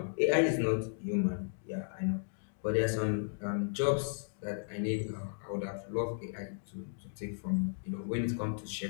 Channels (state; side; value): silent; right; digital silence